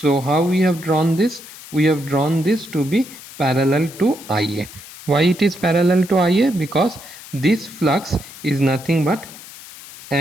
how we have drawn this? We have drawn this to be parallel to IA. Why it is parallel to IA? Because this flux is nothing but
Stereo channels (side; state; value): left; noise; hiss, 17 dB below the sound